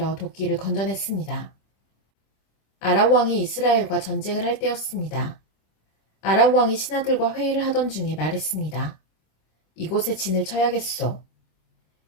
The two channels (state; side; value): late; right; 26 ms